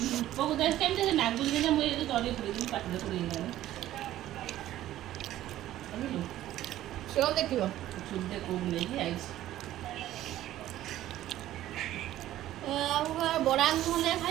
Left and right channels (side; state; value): left; quieter; 13.8 dB